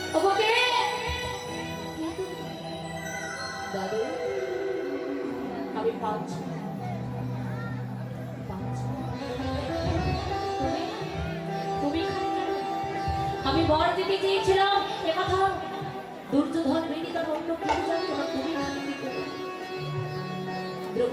ওকে দাদু, আমি পাচ্ছি তুমি আমি বর দিতে চেয়েছিলাম, একথা দুর্যোধন বেদি তার অন্য কেউ জানতো না, তুমি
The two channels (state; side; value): identical; both; correlation 1.00